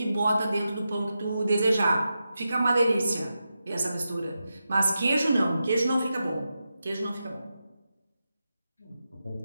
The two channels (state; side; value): inverted; both; correlation -0.90